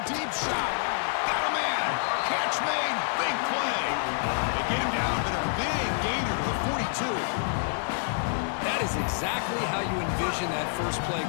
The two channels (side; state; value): right; silent; digital silence